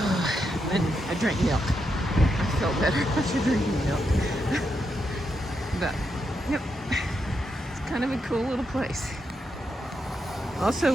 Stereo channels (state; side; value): normal; both; correlation 0.83